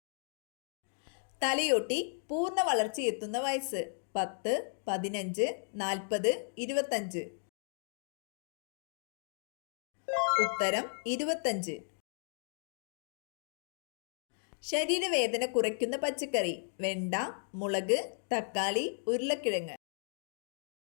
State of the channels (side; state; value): right; silent; digital silence